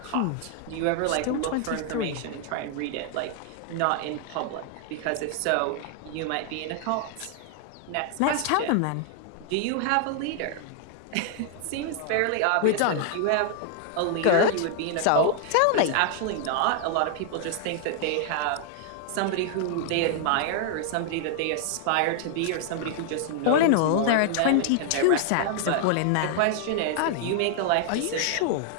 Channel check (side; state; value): both; different; correlation 0.00